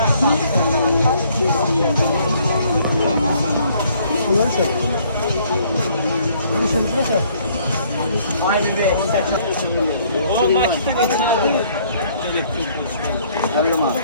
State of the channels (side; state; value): both; inverted; correlation -0.63